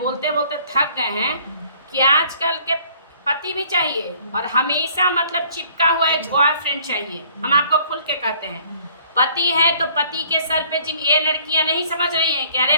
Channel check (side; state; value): both; inverted; correlation -0.58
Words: बोलते थक गए हैं कि आजकल के पति भी चाहिए और हमेशा मतलब चिपका हुआ एक बॉयफ्रेंड चाहिए। हम आपको खुल के कहते हैं, पति है तो पति के सर पे ये लड़कियां नहीं समझ रही हैं कि अरे